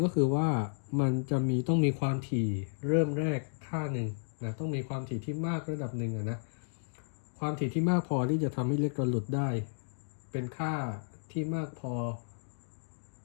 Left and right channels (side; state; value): right; silent; digital silence